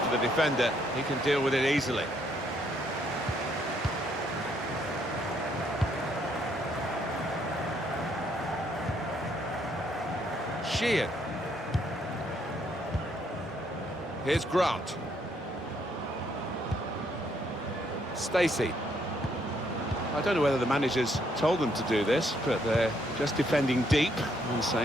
the defender, he can deal with it easily. Sheehan. Here's Grant. Stacey. I don't know whether the managers told them to do this, but they're just defending deep and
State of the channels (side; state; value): both; normal; correlation 0.71